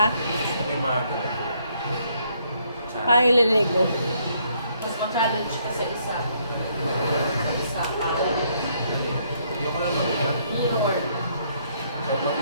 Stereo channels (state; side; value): inverted; both; correlation -0.70